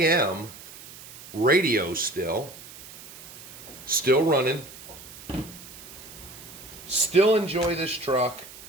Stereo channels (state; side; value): noise; right; hiss, 16 dB below the sound